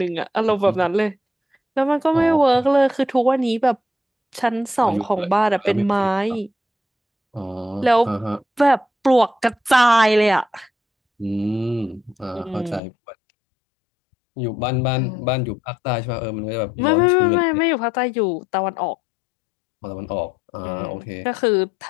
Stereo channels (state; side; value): drops out; right; at 12.8 s